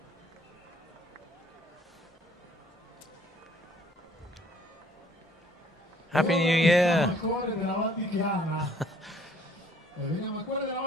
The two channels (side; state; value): both; normal; correlation 0.59